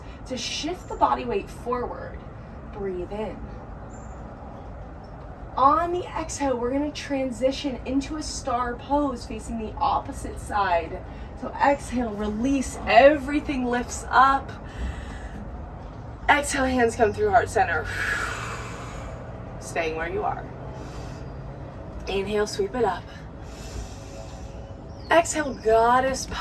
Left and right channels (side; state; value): both; identical; correlation 1.00